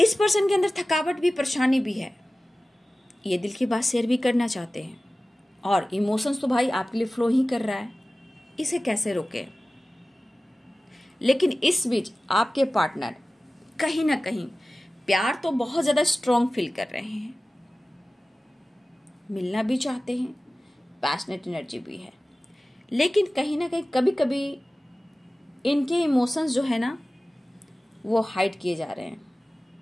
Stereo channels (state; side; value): normal; both; correlation 0.97